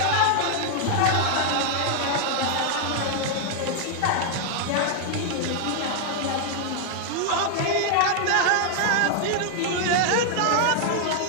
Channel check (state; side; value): different; both; correlation 0.00